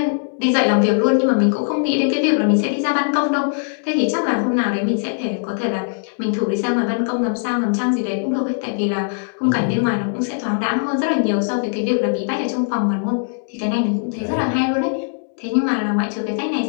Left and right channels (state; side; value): silent; right; digital silence